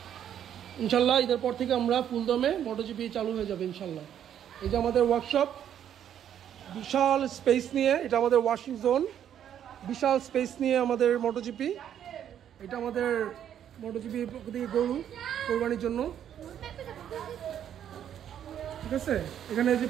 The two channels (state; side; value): quieter; left; 9.8 dB